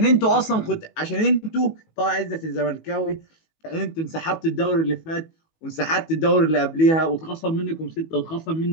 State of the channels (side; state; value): right; late; 18 ms